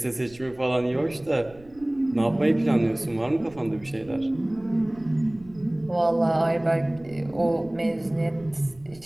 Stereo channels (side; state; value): right; noise; rumble, 24 dB below the sound